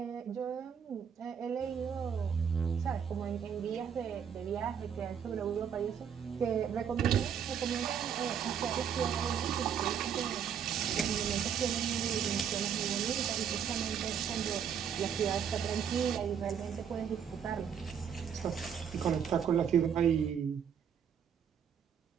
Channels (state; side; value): quieter; left; 7.9 dB